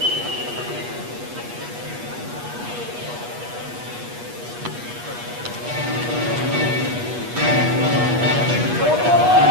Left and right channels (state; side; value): late; left; 8.3 ms